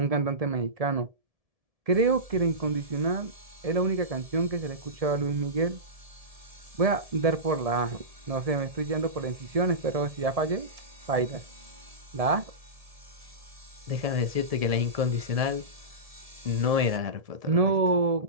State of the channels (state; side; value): late; left; 1.7 ms